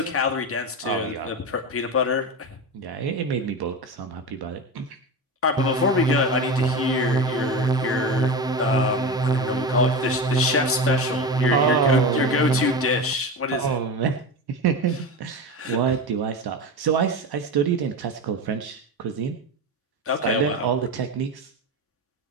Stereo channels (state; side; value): normal; both; correlation 0.23